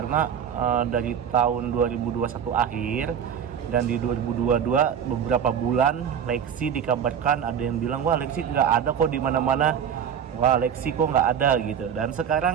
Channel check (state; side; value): quieter; left; 8.2 dB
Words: dari tahun 2021 akhir dan di 2022 beberapa bulan Lexi dikabarkan ada yang bilang wah Lexi nggak ada kok di mana-mana, wah Lexi kok nggak ada gitu. Dan